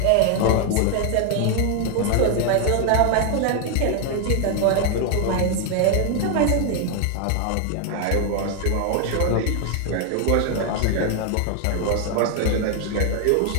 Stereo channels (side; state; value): both; different; correlation 0.00